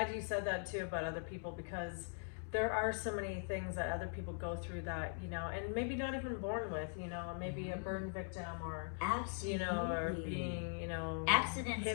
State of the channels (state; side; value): silent; right; digital silence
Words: you said that too about other people, because there are so many things that other people go through that, you know, and maybe not even born with, you know, maybe a burn victim, or Absolutely. you know, or being, you know, accidents